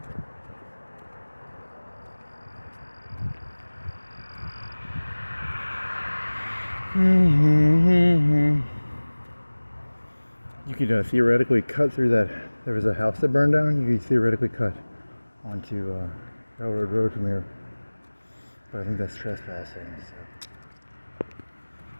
You could theoretically cut through that. There was a house that burned down. You could theoretically cut onto Railroad Road from here. But I think that's trespassing. So.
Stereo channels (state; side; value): inverted; both; correlation -1.00